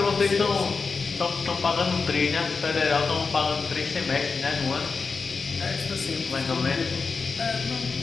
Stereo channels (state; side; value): quieter; right; 4.7 dB